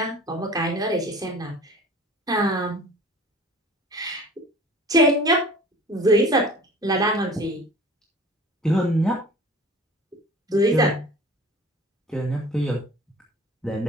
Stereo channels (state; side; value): normal; both; correlation 0.44